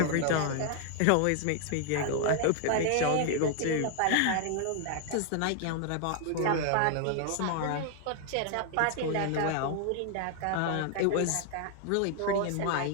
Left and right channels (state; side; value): different; both; correlation 0.00